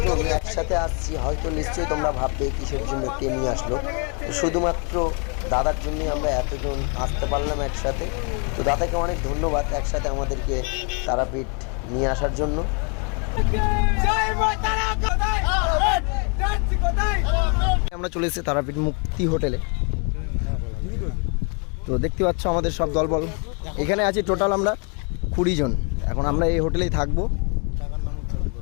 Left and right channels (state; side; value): quieter; right; 37.1 dB